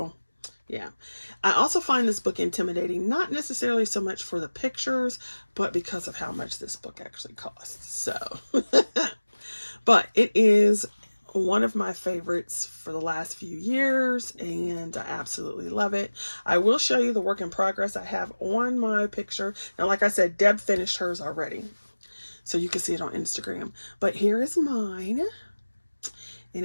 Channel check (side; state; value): both; inverted; correlation -1.00